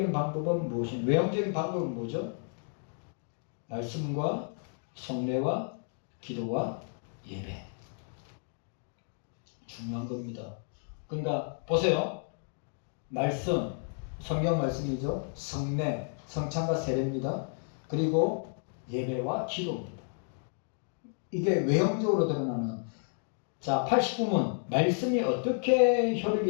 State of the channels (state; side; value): silent; right; 57 dB below the other